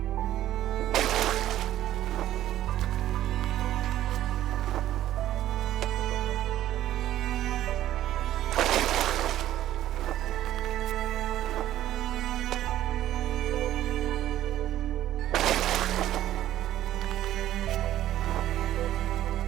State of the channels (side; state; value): left; quieter; 13.0 dB